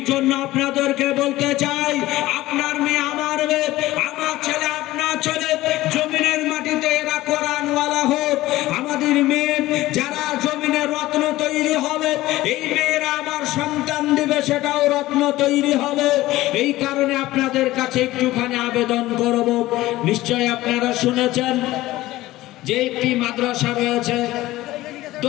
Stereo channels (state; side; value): quieter; right; 17.0 dB